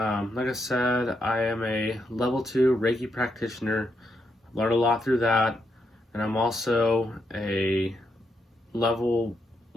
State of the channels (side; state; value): both; normal; correlation 0.80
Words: I said, I am a level 2 Reiki practitioner. Learned a lot through that. And I'm also a level